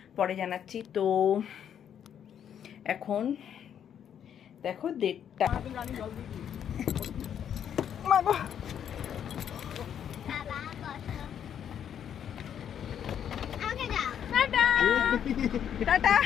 পরে জানাচ্ছি। তো এখন দেখো 1:30। টাটা।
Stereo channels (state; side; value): quieter; right; 9.0 dB